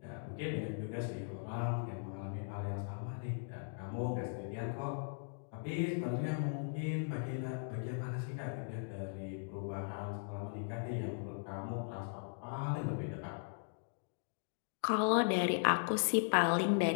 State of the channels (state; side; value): silent; right; digital silence